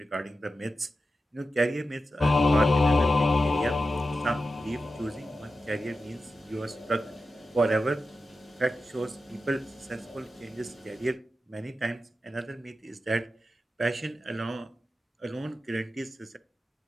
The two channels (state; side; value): normal; both; correlation 0.91